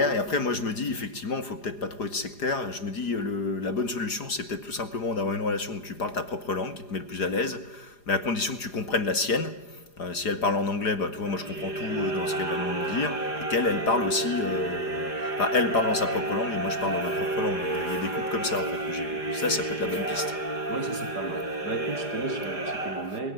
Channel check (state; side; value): late; right; 4.9 ms